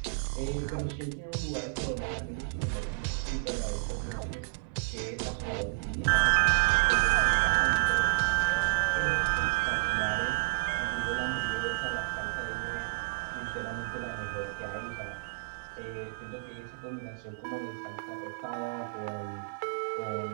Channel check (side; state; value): left; silent; 57 dB below the other